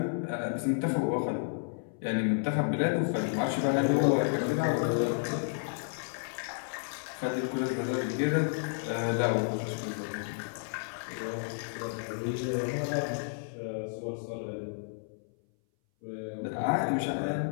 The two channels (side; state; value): right; silent; 57 dB below the other